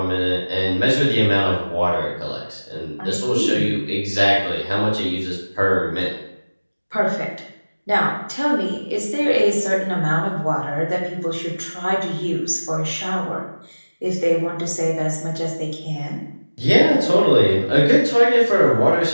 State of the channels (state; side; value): inverted; both; correlation -1.00